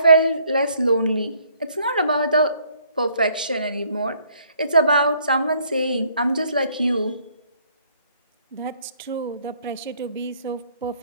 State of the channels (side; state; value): both; inverted; correlation -0.65